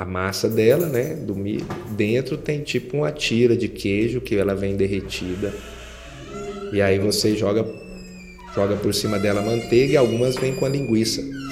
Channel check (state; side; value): identical; both; correlation 1.00